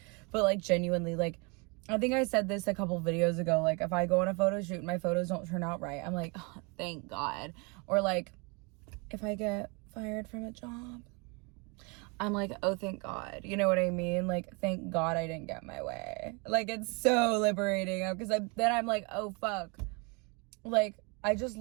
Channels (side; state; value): left; quieter; 31.1 dB